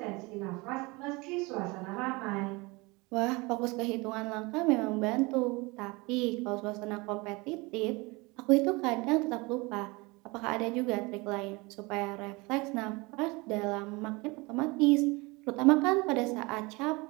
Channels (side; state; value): left; quieter; 25.1 dB